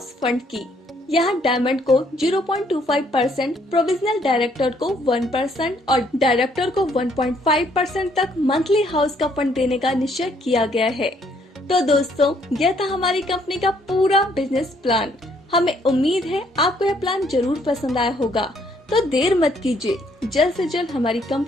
फंड की। यहाँ डायमंड को 0.25%, प्रोविजनल डायरेक्टर को 1% और डायरेक्टर को 1.5% तक मंथली हाउस का फंड देने का निश्चय किया गया है। तो दोस्तों, यह था हमारी कंपनी का पूरा बिजनेस प्लान। हमें उम्मीद है आपको यह प्लान जरूर पसंद आया होगा। तो देर मत कीजिए, जल्द से जल्द हमारी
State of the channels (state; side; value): normal; both; correlation 0.67